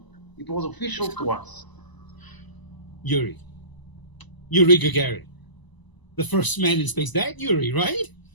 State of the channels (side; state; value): right; late; 1.0 ms